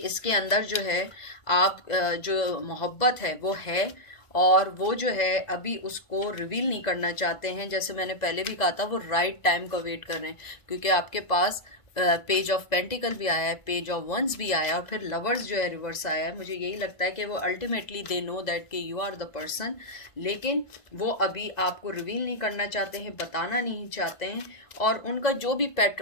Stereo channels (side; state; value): right; late; 1.9 ms